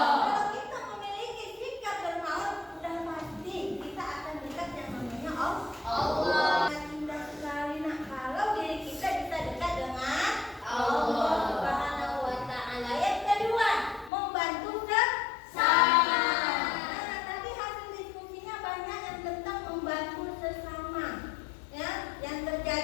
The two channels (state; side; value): drops out; right; at 14.1 s